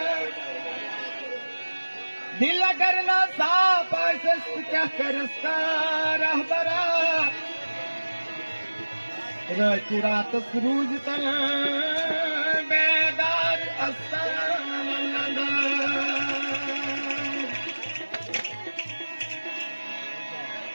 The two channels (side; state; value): both; inverted; correlation -1.00